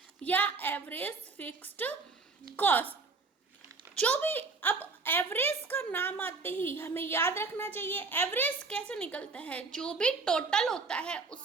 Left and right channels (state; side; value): quieter; left; 4.1 dB